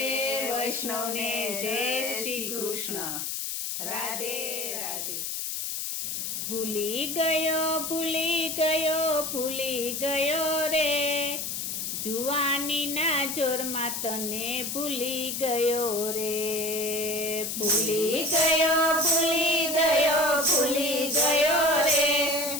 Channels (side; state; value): left; noise; hiss, 3 dB below the sound